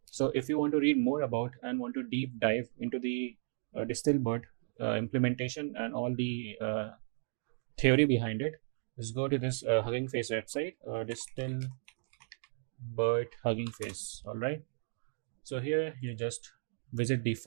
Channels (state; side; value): silent; left; digital silence